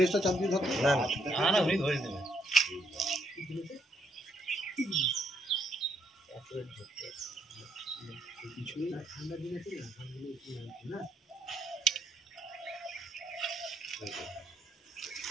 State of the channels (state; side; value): normal; both; correlation 0.73